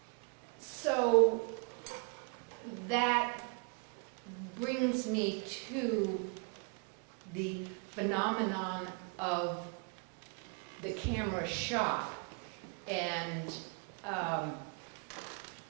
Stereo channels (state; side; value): quieter; left; 37.1 dB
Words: so that brings me to the phenomenon of the camera shop, and